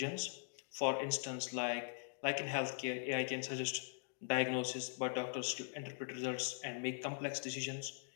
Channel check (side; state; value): right; silent; digital silence